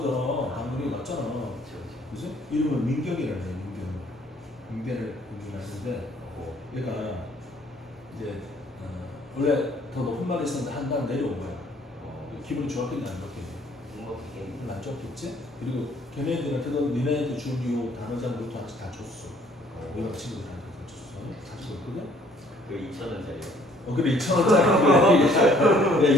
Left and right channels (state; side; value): normal; both; correlation 0.60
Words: 당연히 맞잖아. 그렇죠. 그지? 이름은 민경이라는 애, 민경을 공부하는데 얘가 이제 원래 더 높은 말이 있었는데 한 단 내려온 거야. 기분이 좋았겠냐 안 좋겠냐? 행복했겠네. 별로 안 좋았겠지? 그리고 걔네들한테도 니네한테 준 요 단어장부터 하나씩 다 줬어. 우리가 친구들한테 다 줬어. 가지고 있거든? 그 2,000원짜리요. 그래 2,000원짜리. 야